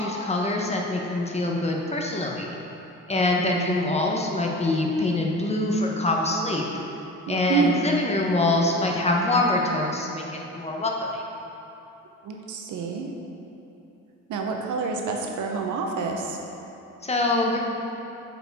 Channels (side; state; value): both; normal; correlation 0.31